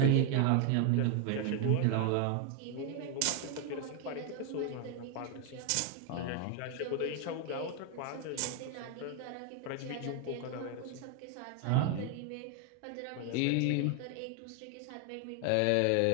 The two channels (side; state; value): both; different; correlation 0.01